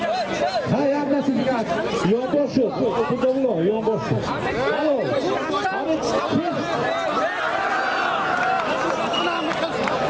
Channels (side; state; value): both; identical; correlation 1.00